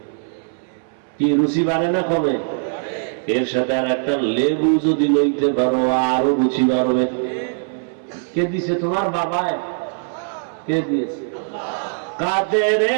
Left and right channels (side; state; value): left; silent; 61 dB below the other